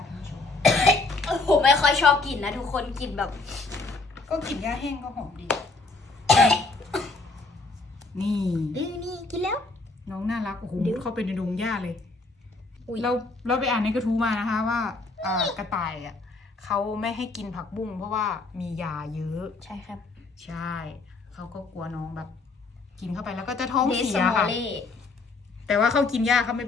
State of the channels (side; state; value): right; quieter; 3.6 dB